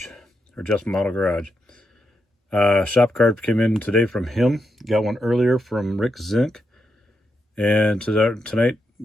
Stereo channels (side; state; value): both; normal; correlation 0.84